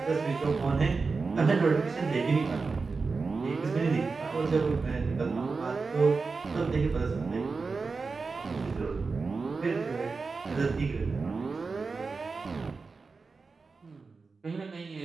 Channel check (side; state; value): left; quieter; 4.4 dB